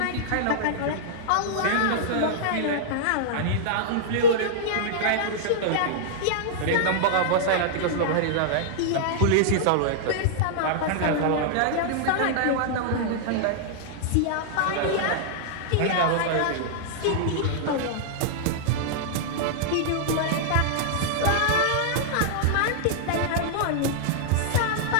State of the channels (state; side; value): different; both; correlation -0.01